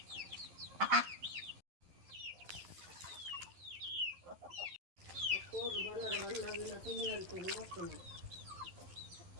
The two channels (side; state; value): left; late; 11 ms